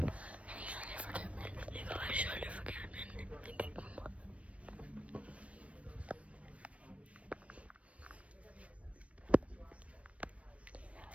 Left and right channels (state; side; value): late; left; 0.063 ms